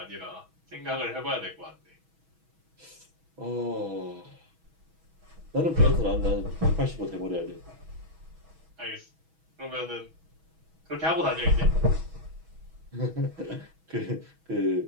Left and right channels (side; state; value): left; late; 6.2 ms